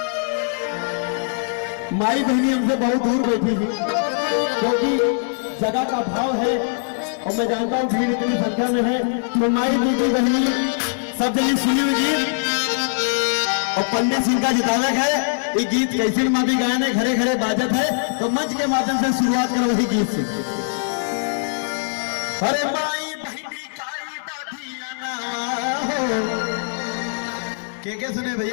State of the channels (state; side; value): silent; right; digital silence